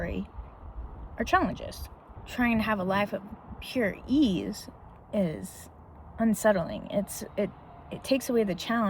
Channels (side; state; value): both; identical; correlation 1.00